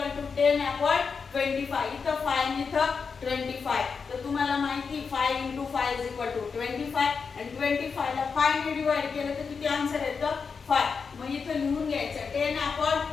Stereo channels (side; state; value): right; quieter; 5.5 dB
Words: to 10 upon 25. इथं 5 आणि इथं 25. तर तुम्हाला माहिती 5 इंटू 5 इज इक्वल टू 25 आणि 25 ला 5 ने डिवाइड केलं तर किती आन्सर येतं 5. मग इथं लिहून घ्यायचं 10 upon